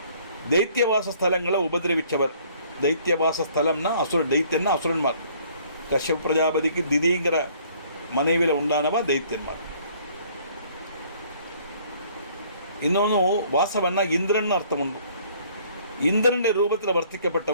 தைத்தியவாச ஸ்தலங்களை உபதிரவிச்சவர். தைத்தியவாச ஸ்தலம்னா அசுர, தைத்தியன்னா அசுரன்மார். கஷ்யப பிரஜாபதிக்கு திதிங்கிற மனைவியில் உண்டானவா தைத்தியன்மார். இன்னொன்று, வாசவன்னா இந்திரன் அர்த்தம் உண்டு. இந்திரனுடைய ரூபத்தில்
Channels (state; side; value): inverted; both; correlation -0.58